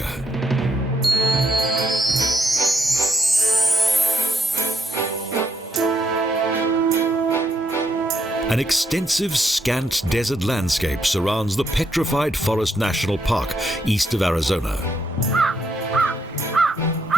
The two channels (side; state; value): both; normal; correlation 0.76